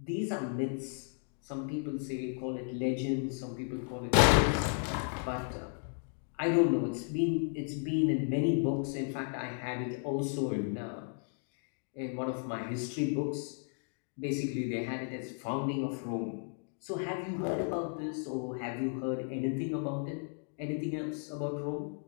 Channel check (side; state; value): right; silent; 55 dB below the other